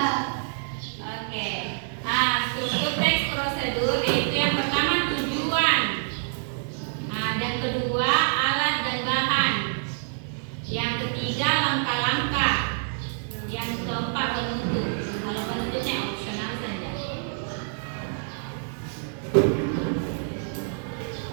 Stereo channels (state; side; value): silent; left; digital silence